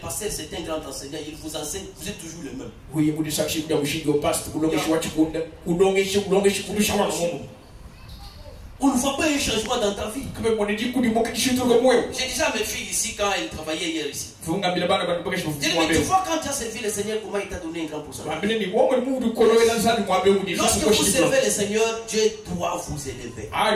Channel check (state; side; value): identical; both; correlation 1.00